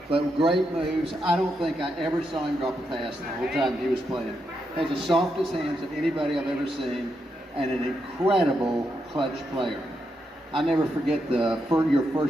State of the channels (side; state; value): both; normal; correlation 0.83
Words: but great moves. I don't think I ever saw him drop a pass the whole time he was playing. Has the softest hands of anybody I've ever seen, and an incredible clutch player. I never forget your